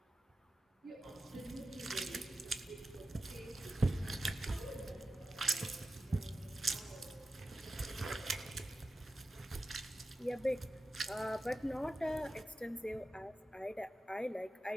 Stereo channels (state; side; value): normal; both; correlation 0.92